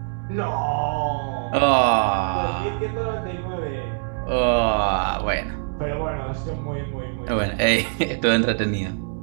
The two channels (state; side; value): silent; left; digital silence